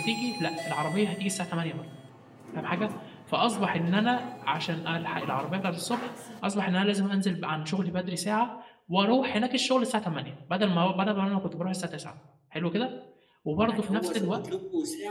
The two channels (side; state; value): both; identical; correlation 1.00